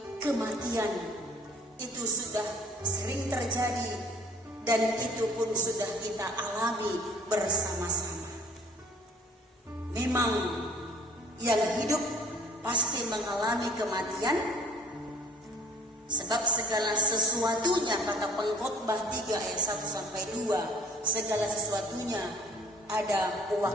kematian itu sudah sering terjadi dan itu pun sudah kita alami bersama-sama. Memang yang hidup pasti mengalami kematian, sebab segala sesuatunya, kata Pengkhotbah 3 ayat 1-2, segala sesuatunya ada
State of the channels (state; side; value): normal; both; correlation 0.54